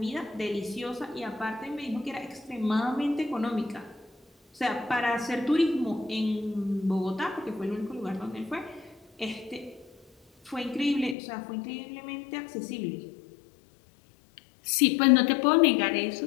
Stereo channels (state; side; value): drops out; right; at 11.2 s